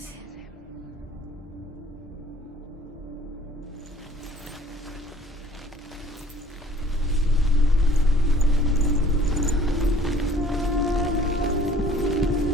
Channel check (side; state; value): both; normal; correlation 0.54